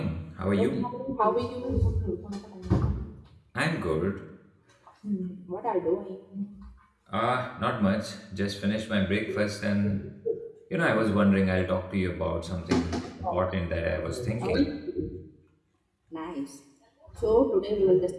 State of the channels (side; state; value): both; identical; correlation 1.00